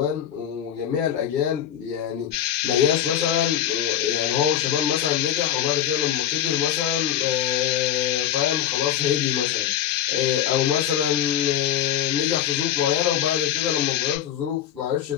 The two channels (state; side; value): quieter; right; 10.4 dB